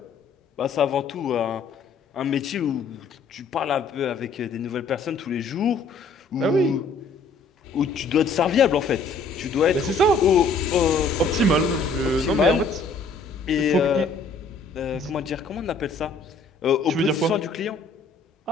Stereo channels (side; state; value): right; quieter; 3.9 dB